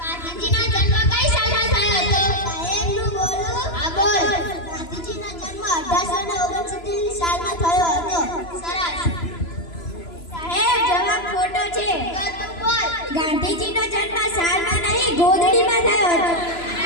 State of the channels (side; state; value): right; late; 3.0 ms